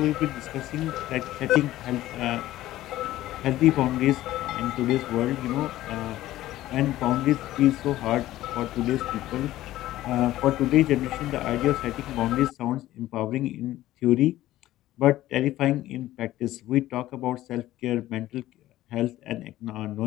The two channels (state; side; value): quieter; right; 15.1 dB